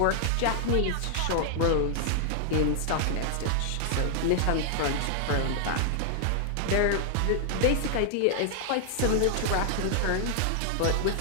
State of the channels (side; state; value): both; different; correlation -0.01